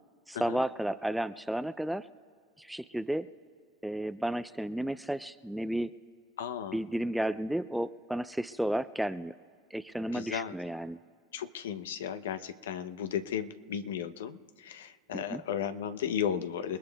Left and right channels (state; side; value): normal; both; correlation 0.60